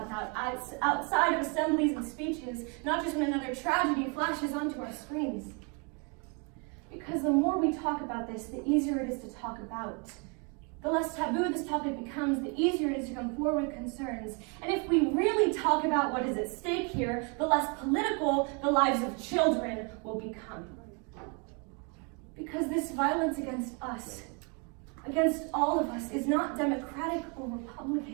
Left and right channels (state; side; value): quieter; left; 34.5 dB